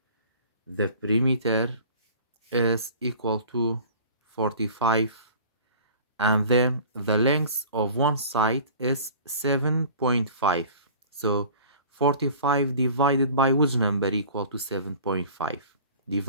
the perimeter is equal to 45, and then the length of one side is 7.5. So 45 divided by which number equal to 7.5?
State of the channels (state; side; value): inverted; both; correlation -0.44